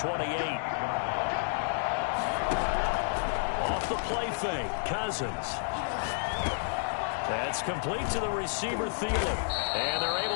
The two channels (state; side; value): silent; right; digital silence